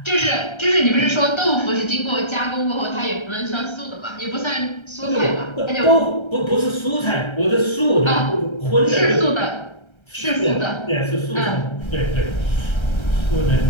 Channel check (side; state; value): right; late; 1.3 ms